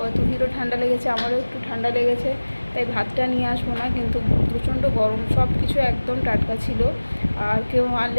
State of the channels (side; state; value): both; inverted; correlation -1.00